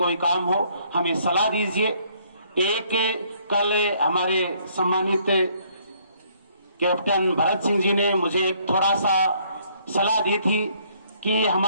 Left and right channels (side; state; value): both; inverted; correlation -0.65